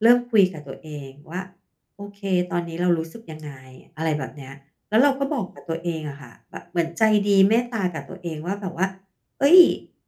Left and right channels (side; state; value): both; identical; correlation 1.00